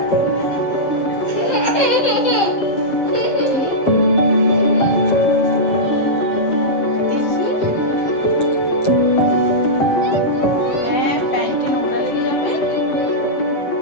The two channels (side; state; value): right; late; 7.6 ms